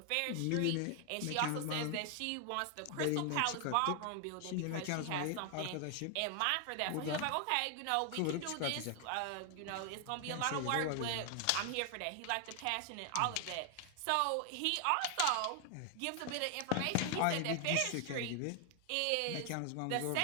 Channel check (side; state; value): both; different; correlation 0.00